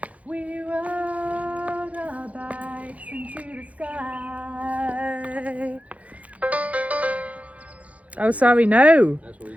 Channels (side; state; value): left; late; 0.067 ms